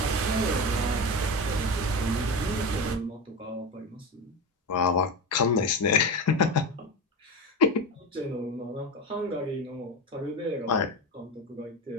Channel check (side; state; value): both; normal; correlation 0.21